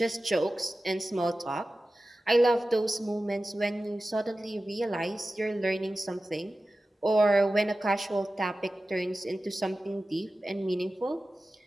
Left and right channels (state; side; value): normal; both; correlation 0.95